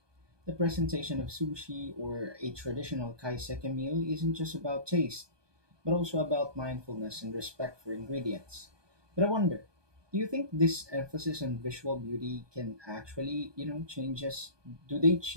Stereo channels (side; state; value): left; late; 1.2 ms